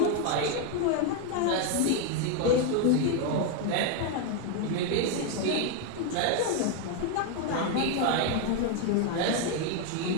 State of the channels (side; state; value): both; different; correlation 0.01